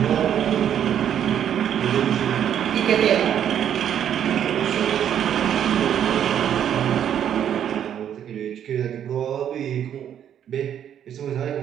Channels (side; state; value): left; quieter; 9.6 dB